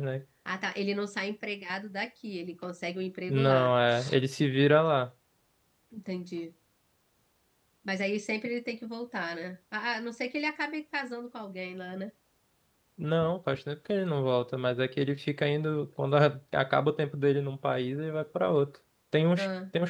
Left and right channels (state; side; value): identical; both; correlation 1.00